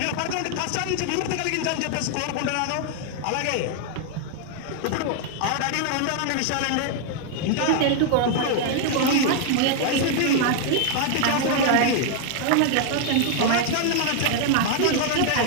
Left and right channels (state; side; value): different; both; correlation 0.00